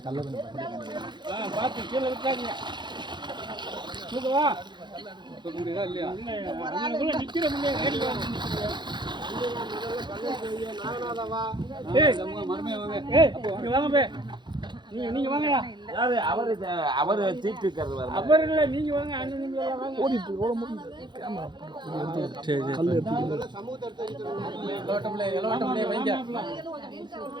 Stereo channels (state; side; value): late; left; 0.22 ms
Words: பார்த்து கீழே விட்டாங்க தூக்கவா தூக்க முடியுதா இல்லையா நிற்கிற முடியாது வாங்க நீங்க வாங்க அவரு தீட்டு இருக்கிறது அவர் இல்லை நீங்க வாங்க அண்ணன் நீங்க வாங்க ஓடிட்டு